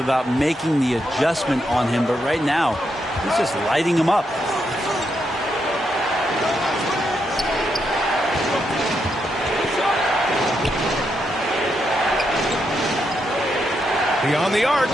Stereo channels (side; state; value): both; normal; correlation 0.81